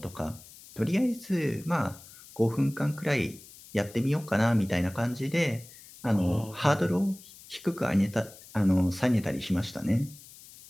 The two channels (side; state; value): left; noise; hiss, 20 dB below the sound